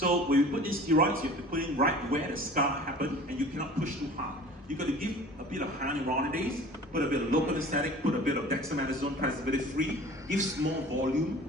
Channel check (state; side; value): normal; both; correlation 0.43